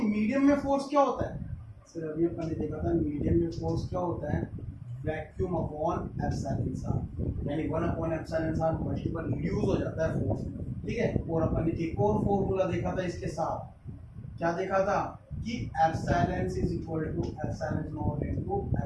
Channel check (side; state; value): both; identical; correlation 1.00